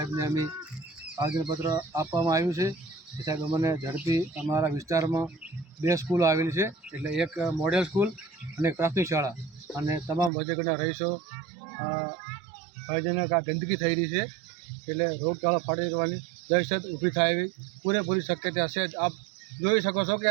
અમે આવેદનપત્ર આપવામાં આવ્યું છે કે સાહેબ અમને ઝડપી અમારા વિસ્તારમાં 2 સ્કૂલો આવેલી છે, એટલે એક મોડેલ સ્કૂલ અને એક પ્રાથમિક શાળા, અને તમામ વજેગઢના રહીશો ભયજનક આ ગંદકી થઈ રહી છે, એટલે રોગચાળો ફાટી જવાની દહેશત ઊભી થાય એવી પૂરેપૂરી શક્યતા છે। આપ જોઈ શકો છો કે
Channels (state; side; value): drops out; left; at 10.3 s